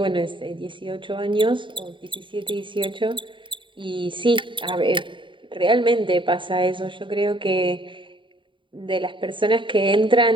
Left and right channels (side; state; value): left; late; 0.24 ms